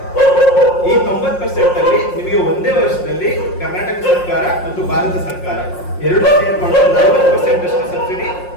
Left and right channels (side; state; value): right; late; 5.6 ms